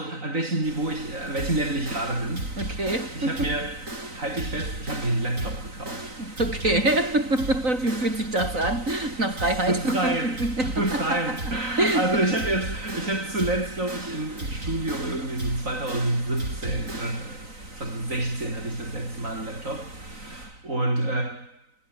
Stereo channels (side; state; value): left; late; 3.9 ms